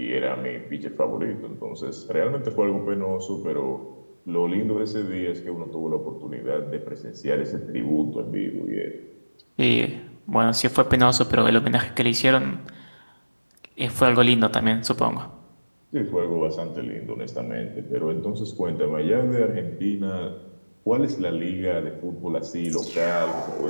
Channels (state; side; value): inverted; both; correlation -1.00